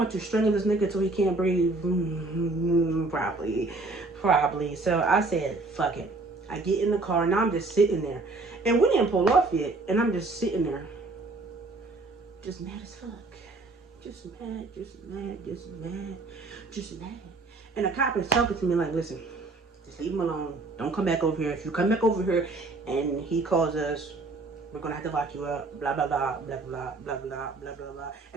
to strangle this nigga till he can't breathe? Probably. So I said, fuck it. I get in the car, and now I'm just sitting there. And we didn't pull off yet, and I'm just sitting there. Just mad as fuck. Just mad. And the cop is talking to me like, listen, just leave him alone. Don't come back over here. If you come back over here and he calls us, we're gonna have to lock you up, blah blah blah blah blah blah blah blah blah blah.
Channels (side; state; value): left; quieter; 3.4 dB